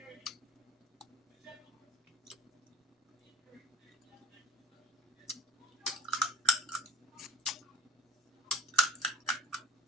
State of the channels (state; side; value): normal; both; correlation 0.40